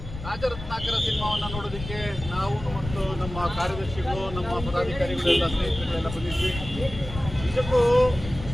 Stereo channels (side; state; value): left; noise; rumble, 10 dB below the sound